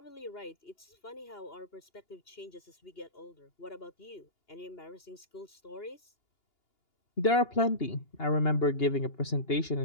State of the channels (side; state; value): right; late; 2.8 ms